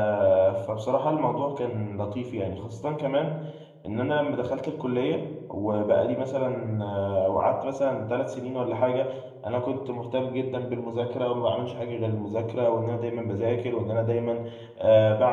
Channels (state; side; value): identical; both; correlation 1.00